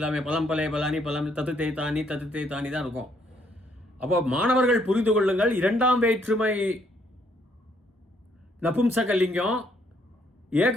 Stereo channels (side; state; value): both; normal; correlation 0.69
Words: பலம் பலே பலானி பலம் தத்துதே தானி தான் இருக்கும். அப்போ மாணவர்கள் புரிந்து கொள்ளுங்கள், இரண்டாம் வேற்றுமை நபும்சக லிங்கம்,